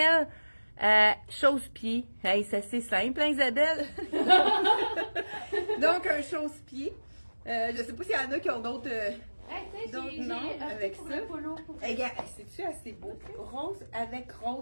Chausse-pied. Hey, ça c'est simple, hein, Isabelle? Donc, un chausse-pied. Je sais pas s'il y en a qui ont d'autres. Donc, non, avec ça. Regarde, c'est-tu assez beau? Rose avec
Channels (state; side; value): inverted; both; correlation -1.00